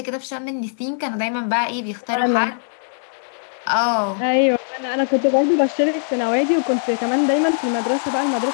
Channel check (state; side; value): silent; right; 63 dB below the other